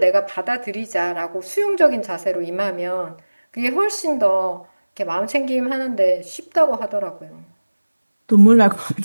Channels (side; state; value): both; inverted; correlation -1.00